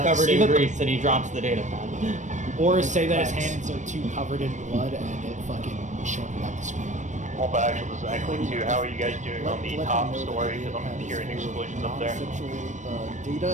covered in grease and he drops the data pad. Or say that his hands are too covered in blood and it fucking shorted out the screen. Well, but actually, this is Acklay 2. How are you guys doing on the top story? Because I'm hearing explosions up there.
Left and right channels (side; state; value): left; late; 0.35 ms